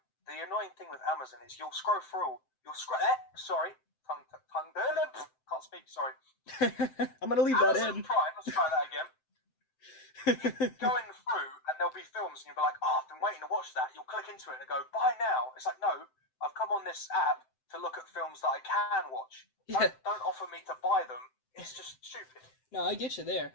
the annoying thing with Amazon is you'll scroll through. Sorry, tongue. Can't speak. Sorry. I'm gonna leave that Amazon in. Prime. Let's try that again. Going through, and there'll be films, and you'll be like, "Oh, I've been waiting to watch that." You'll click into it and go, "Buy now." It's like, no, I've come on this app to look at films that I can watch. Yeah. Don't offer me to buy them. It's just stupid. No, I get you there.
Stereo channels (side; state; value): right; late; 7.8 ms